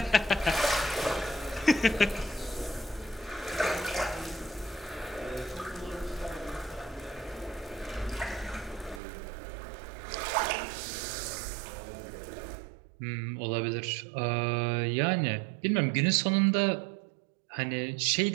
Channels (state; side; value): drops out; left; at 9.0 s